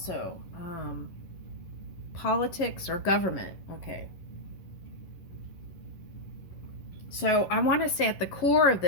politics or government. Okay. So I want to say at the core of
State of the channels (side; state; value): right; late; 11 ms